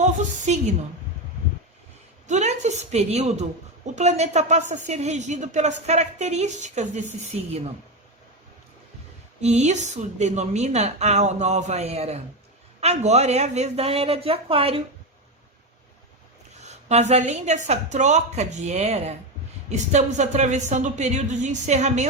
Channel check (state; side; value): normal; both; correlation 0.13